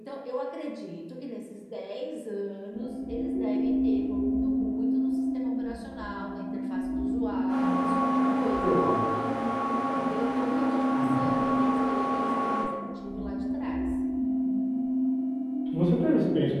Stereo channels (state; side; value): identical; both; correlation 1.00